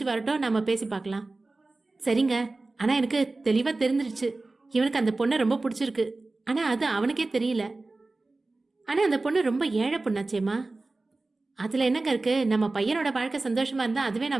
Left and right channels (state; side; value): quieter; left; 3.3 dB